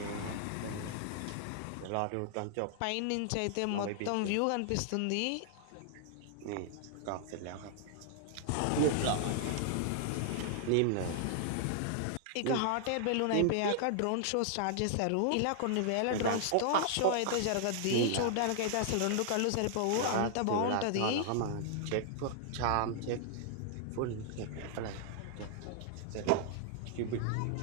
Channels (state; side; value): different; both; correlation -0.01